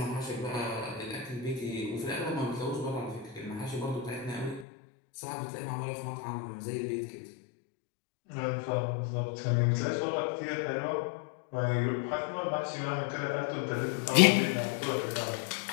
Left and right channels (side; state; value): right; drops out; at 4.7 s